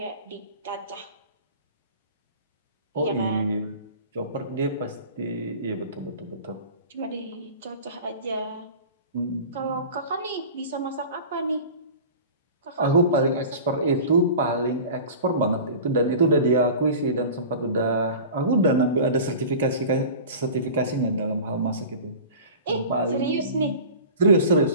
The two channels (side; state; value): both; inverted; correlation -0.37